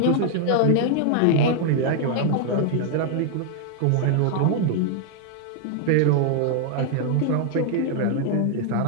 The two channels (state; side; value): different; both; correlation 0.00